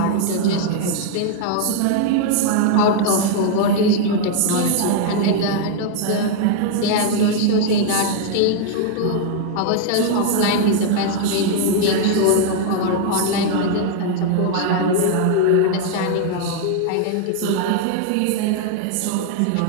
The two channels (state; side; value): different; both; correlation 0.00